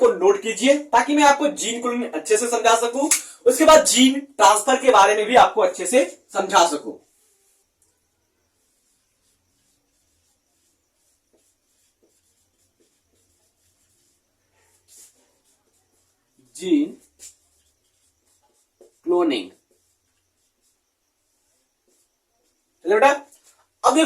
नोट कीजिए ताकि मैं आपको जीन क्लोनिंग अच्छे से समझा सकूं, उसके बाद जीन ट्रांसफर के बारे में भी आपको अच्छे से समझा सकूं। जीन क्लोनिंग, चलो बेटा, अब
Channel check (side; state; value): both; identical; correlation 1.00